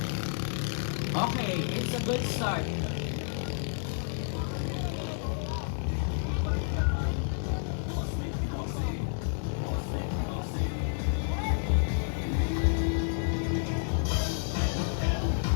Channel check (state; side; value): silent; right; digital silence